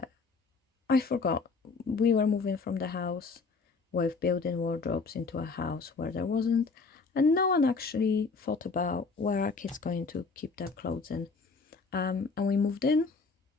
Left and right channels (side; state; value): right; quieter; 4.5 dB